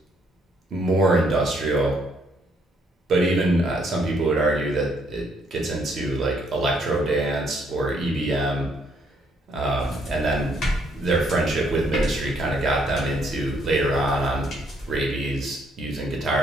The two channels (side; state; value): both; normal; correlation 0.70